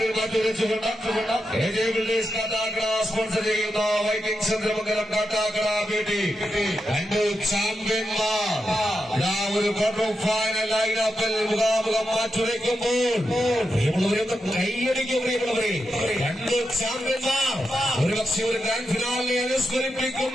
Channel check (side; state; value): both; normal; correlation 0.87